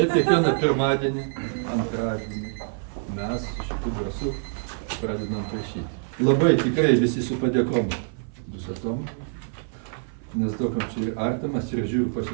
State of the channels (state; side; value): silent; left; 55 dB below the other